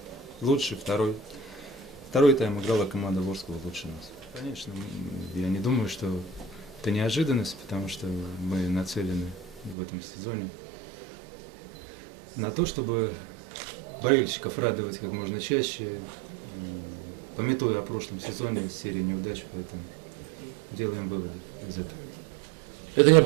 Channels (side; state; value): left; drops out; at 9.8 s